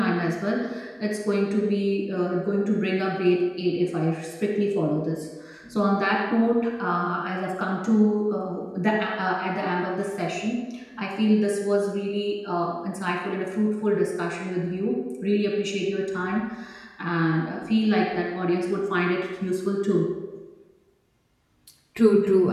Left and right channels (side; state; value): both; identical; correlation 1.00